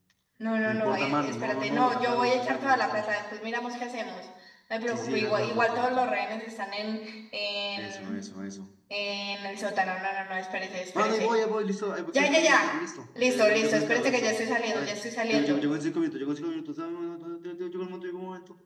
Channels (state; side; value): identical; both; correlation 1.00